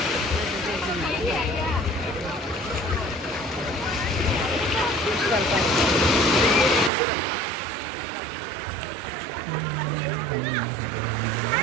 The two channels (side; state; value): left; drops out; at 6.9 s